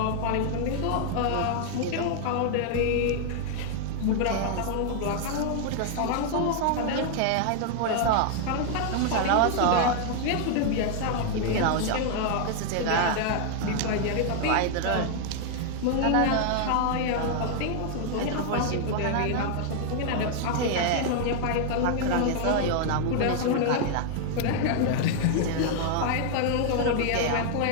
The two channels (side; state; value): both; different; correlation 0.00